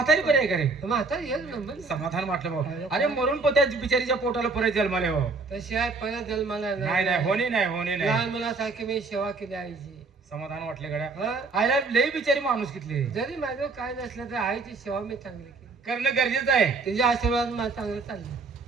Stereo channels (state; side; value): quieter; left; 4.0 dB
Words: बरी आहे का रे? म्हातार एक नंबर. समाधान वाटलं भाऊ. अरे मरून पण त्या बिचारीच्या पोटाला परत जन्माले भाऊ. तशी आहे परत जन्माला नाही नाही होणे नाही होणे नाही. लहान मुलासारखी मी सेवा केली आईची. समाधान वाटले गड्या. हा? आईला लई बिचारी माणूस कितले. जरी माझं काय नसलं तर आईची सेवा मी चांगली केली. करणं गरजेचं आहे. तिच्या आशीर्वाद मला चांगलं चाललं.